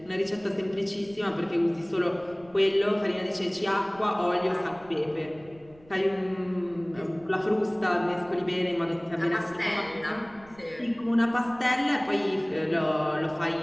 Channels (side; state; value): right; noise; rumble, 25 dB below the sound